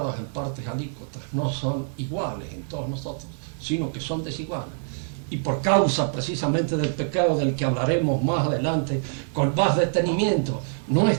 en partes alícuotas, no son iguales en todos nosotros, sino que son desiguales. Y por causa precisamente del pecado del que hablaremos más adelante con más detenimiento,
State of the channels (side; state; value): left; silent; 62 dB below the other